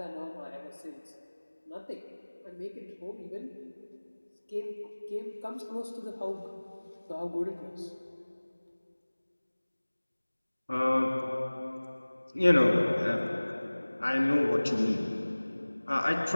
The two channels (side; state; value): both; inverted; correlation -1.00